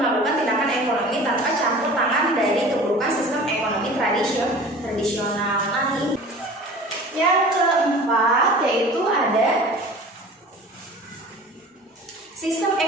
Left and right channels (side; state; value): both; normal; correlation 0.41